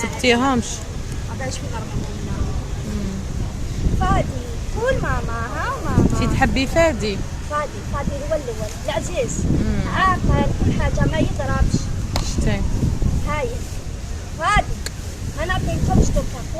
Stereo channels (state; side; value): identical; both; correlation 1.00